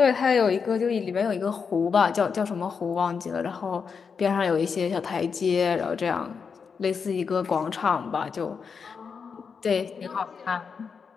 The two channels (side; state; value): right; quieter; 5.9 dB